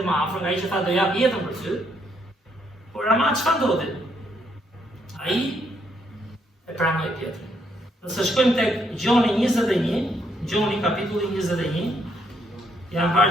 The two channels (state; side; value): normal; both; correlation 0.73